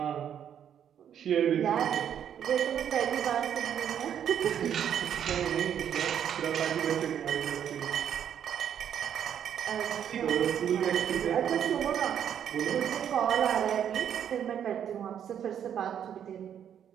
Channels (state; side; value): quieter; left; 9.2 dB